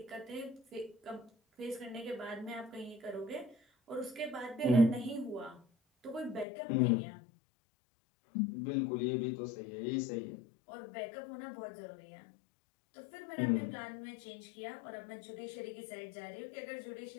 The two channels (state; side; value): drops out; right; at 6.5 s